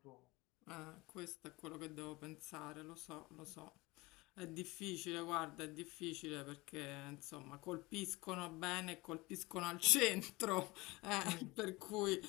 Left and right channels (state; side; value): quieter; right; 22.3 dB